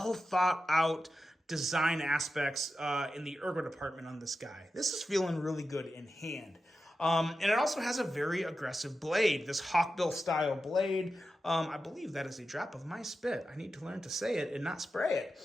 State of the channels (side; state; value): both; normal; correlation 0.91